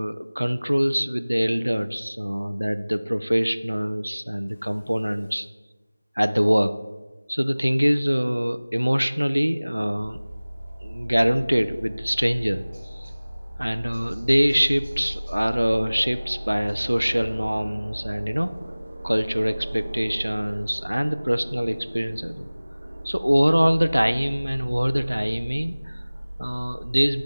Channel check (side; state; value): both; inverted; correlation -1.00